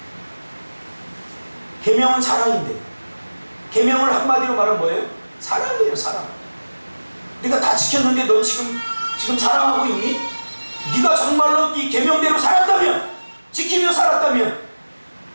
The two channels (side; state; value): both; inverted; correlation -1.00